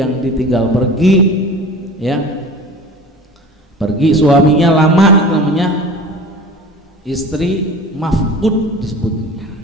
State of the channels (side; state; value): both; normal; correlation 0.38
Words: ditinggal pergi, ya pergi suaminya lama, itu namanya istri mafqud disebutnya.